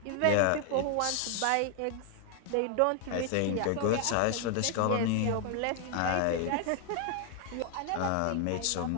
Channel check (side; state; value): both; different; correlation 0.00